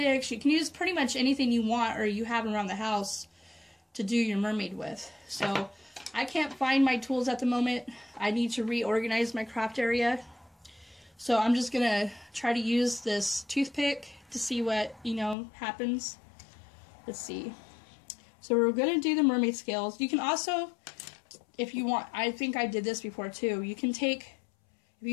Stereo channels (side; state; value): right; drops out; at 15.4 s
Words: You can use pretty much anything you want or you have around the house to do your mermaid with. So I can't find my tools at the moment. I need to reorganize my craft area. So I'm just gonna try to use this toothpick to see what, happens. Let's see. So we're gonna do the mermaid scales. You can also, if you want, I think I did this before too, you can take, if